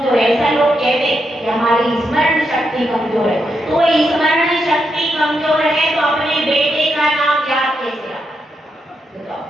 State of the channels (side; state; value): both; normal; correlation 0.83